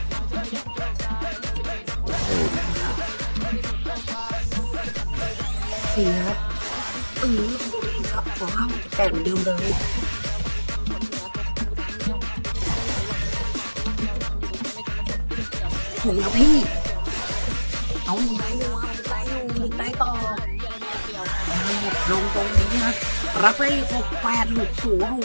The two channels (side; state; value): both; inverted; correlation -1.00